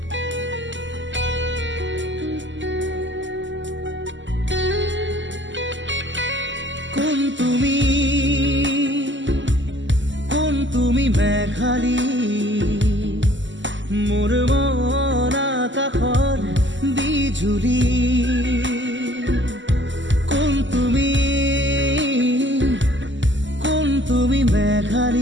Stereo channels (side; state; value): left; late; 0.54 ms